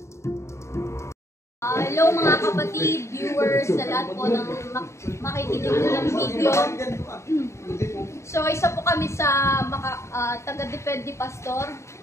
mga kapatid, viewers, sa lahat po ng makikinig ng video. So isa po kami sa taga-Defend ni Pastor.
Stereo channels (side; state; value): right; late; 0.14 ms